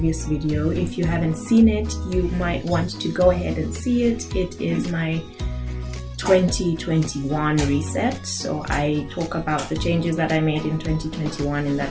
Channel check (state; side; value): identical; both; correlation 1.00